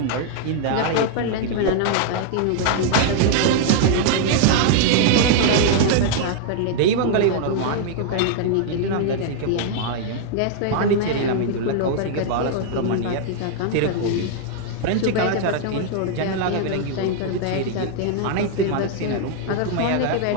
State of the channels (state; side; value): different; both; correlation 0.00